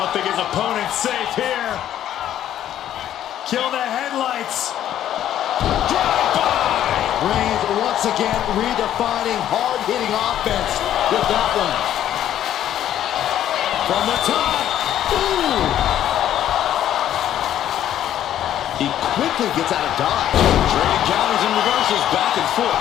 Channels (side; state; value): right; quieter; 11.3 dB